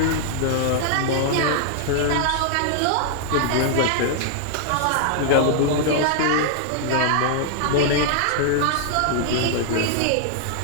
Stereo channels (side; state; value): both; different; correlation -0.01